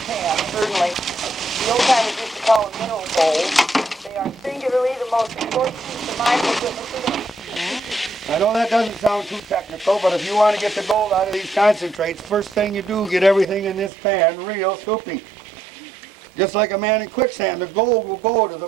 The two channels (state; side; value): drops out; left; at 13.9 s